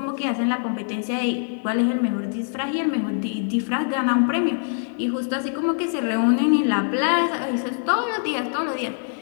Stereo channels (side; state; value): right; silent; 57 dB below the other